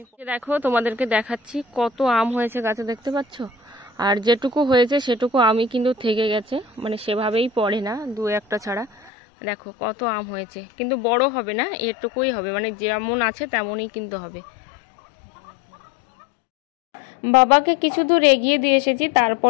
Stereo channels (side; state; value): right; drops out; at 9.1 s